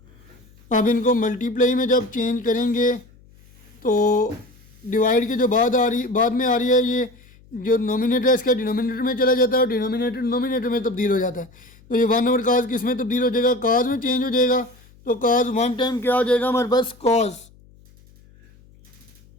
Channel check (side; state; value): left; noise; hum, 27 dB below the sound